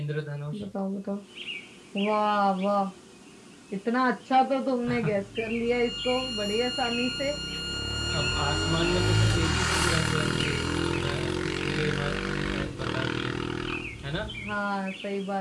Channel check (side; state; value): both; identical; correlation 1.00